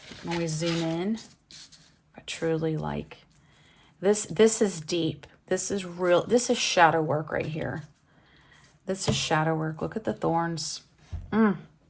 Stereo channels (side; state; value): both; identical; correlation 1.00